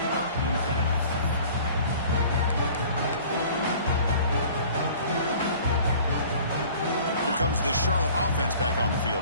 Here comes the Charlotte offense back on the field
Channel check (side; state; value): both; inverted; correlation -0.48